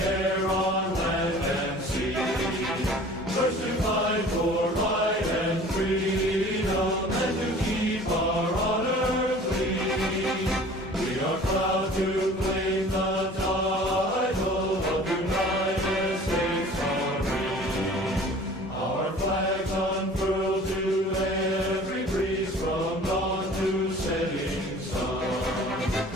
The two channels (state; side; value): normal; both; correlation 0.46